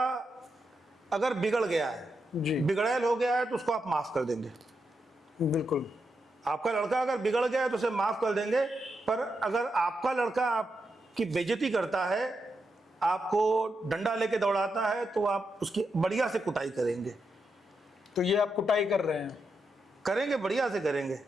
अगर बिगड़ गया है, बिगड़ैल हो गया है, तो उसको आप माफ कर देंगे। बिल्कुल। आपका लड़का अगर बिगड़ गया है तो उसे माफ कर देंगे। पर अगर आपका लड़का आपकी बेइज्जती करता है, आपको डंडा लेके दौड़ाता है, तो आप उसकी बढ़िया से कुटाई करेंगे। तो ये आप कुटाई कर रहे हैं? करेंगे, बढ़िया से करेंगे।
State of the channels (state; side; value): normal; both; correlation 0.85